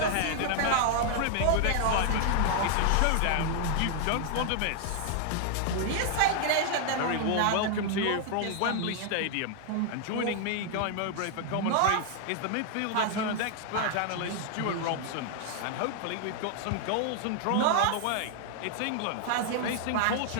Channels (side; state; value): both; different; correlation 0.00